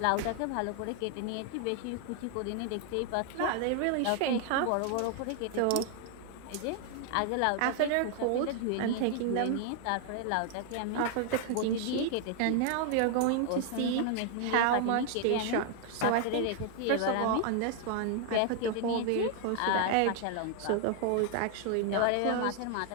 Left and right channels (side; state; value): both; different; correlation 0.00